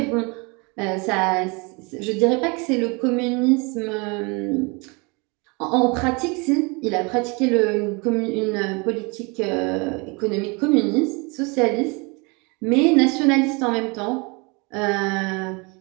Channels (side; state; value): left; quieter; 29.3 dB